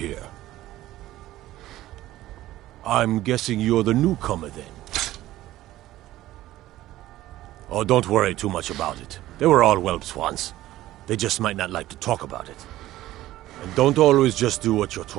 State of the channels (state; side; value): quieter; left; 15.2 dB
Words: I'm guessing you're the newcomer then. Oh, don't worry too much about it. They were all whelps once. They just might not like to talk about it. And don't always just do what you're